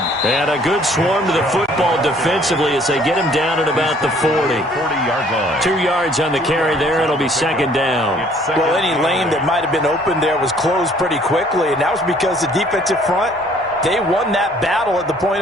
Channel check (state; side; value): normal; both; correlation 0.59